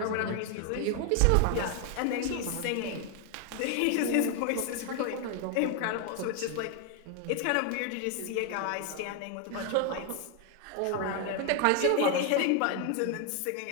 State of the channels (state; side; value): different; both; correlation 0.01